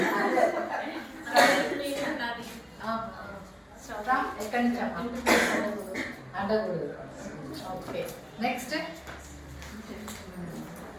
ఎక్కడి నుంచి అడగూడదు ఓకే నెక్స్ట్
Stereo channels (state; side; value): identical; both; correlation 1.00